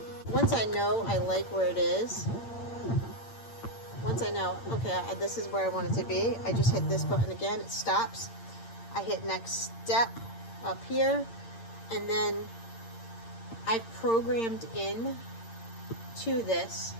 Once I know I like where it is, once I know, okay, this is where I want it to be, I just hit this button again. It stops. I hit next step up here. And then I've programmed in to this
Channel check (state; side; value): late; right; 8.8 ms